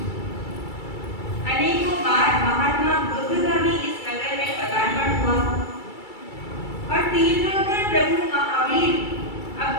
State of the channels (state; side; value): late; right; 2.3 ms